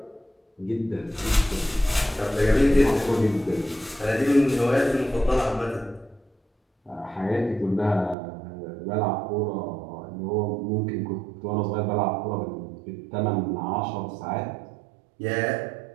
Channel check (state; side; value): drops out; left; at 8.2 s